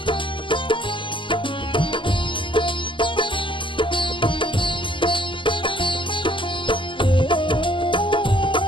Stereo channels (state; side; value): late; right; 0.25 ms